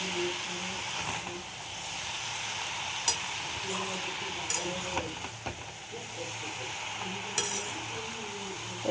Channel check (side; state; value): both; identical; correlation 1.00